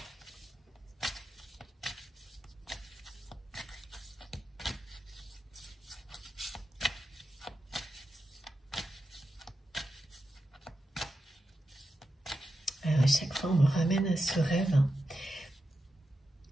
chaque fois, on me ramène à ce rêve.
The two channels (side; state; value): both; normal; correlation 0.89